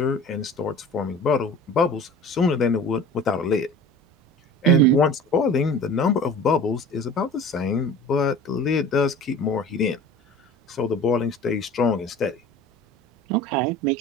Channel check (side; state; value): both; normal; correlation 0.41